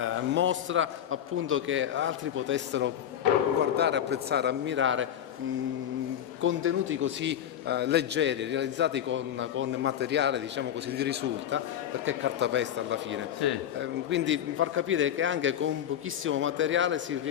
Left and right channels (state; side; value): quieter; right; 10.2 dB